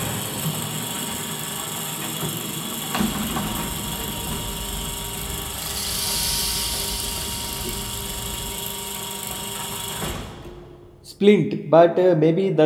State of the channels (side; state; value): both; identical; correlation 1.00